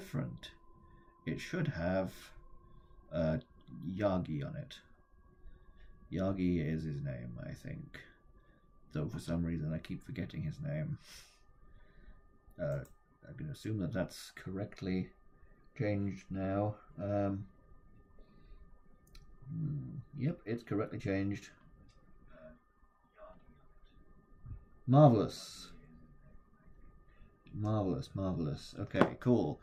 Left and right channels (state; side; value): identical; both; correlation 1.00